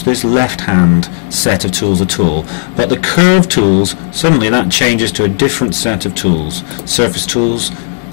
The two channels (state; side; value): silent; right; digital silence